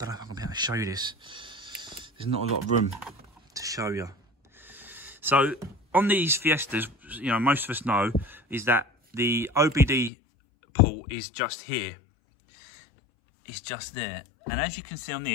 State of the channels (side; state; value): right; drops out; at 10.1 s